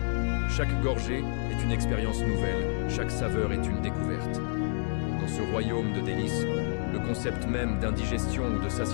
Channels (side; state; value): right; silent; 59 dB below the other